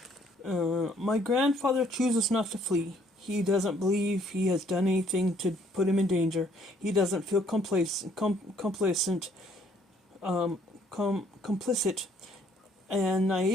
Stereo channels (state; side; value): normal; both; correlation 0.64